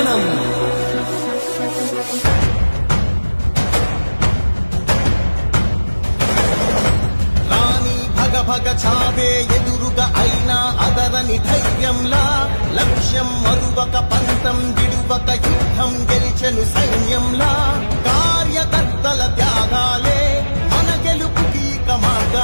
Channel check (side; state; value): both; inverted; correlation -1.00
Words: రాణి భగ భగ చావే ఎదురుగా అయినా అదరని ధైర్యంలా లక్ష్యం మరువక పంతం విడువక యుద్ధం గెలిచెను సైన్యంలా కార్యకర్తల త్యాగాలే మన గెలుపుకి ఇక